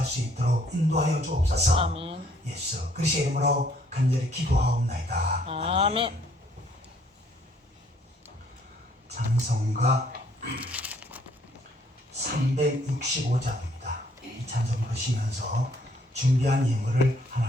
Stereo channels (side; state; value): both; normal; correlation 0.64